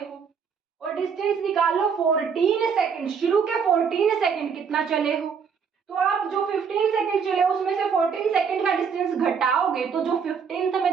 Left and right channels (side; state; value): left; quieter; 6.4 dB